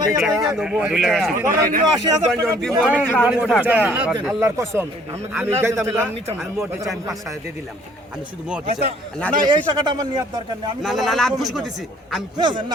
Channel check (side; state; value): both; normal; correlation 0.58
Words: আল্লাহর কসম আমি যাইতাম আমি মোটে চাই 5000 দিয়ে দিলাম আমি শুধু মোটে চাই না এই টাকাটা আমার নিয়ার দরকার নেই আমি না না না আমি খুশি করতেছি আমি খুশি